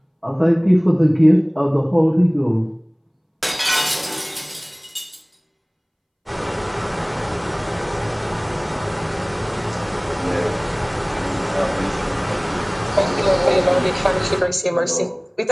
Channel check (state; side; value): identical; both; correlation 1.00